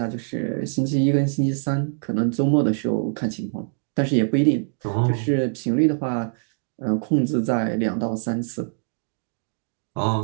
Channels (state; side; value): silent; left; 63 dB below the other